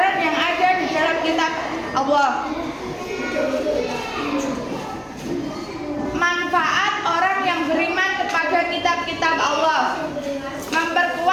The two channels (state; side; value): identical; both; correlation 1.00